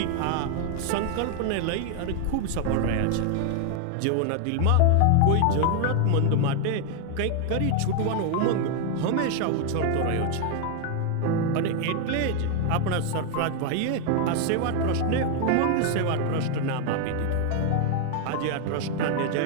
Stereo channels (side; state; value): both; different; correlation 0.00